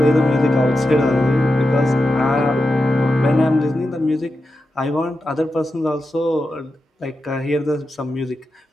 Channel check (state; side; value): normal; both; correlation 0.89